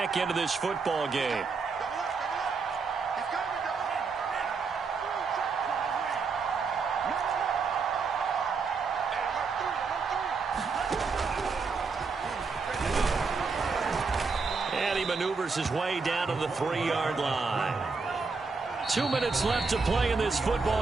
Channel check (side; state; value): left; quieter; 4.7 dB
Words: into this football game. And he maneuvers his way down to the 3-yard line. 2 minutes left to play in this